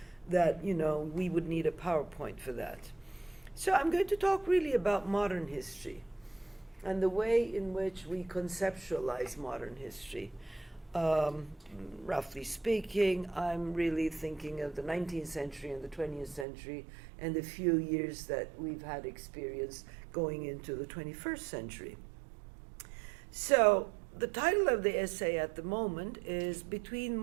that, we would need a PowerPoint for that. So I'm going to talk really about modern history and the way in which we conceptualize modern history. Roughly speaking, I'm really thinking of the 19th century and the 20th century and the few years that we've had experience going into the 21st century. So the title of the essay at the moment is Between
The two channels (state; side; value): drops out; left; at 16.4 s